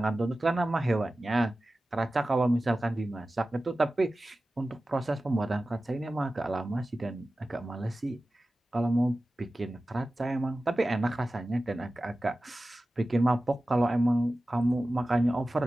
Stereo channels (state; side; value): normal; both; correlation 0.95